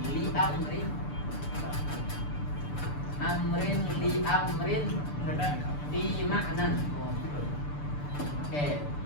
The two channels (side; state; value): right; late; 6.8 ms